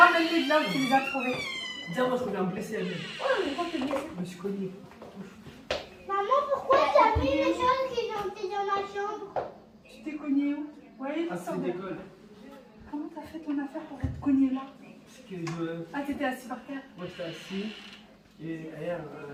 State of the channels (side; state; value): both; identical; correlation 1.00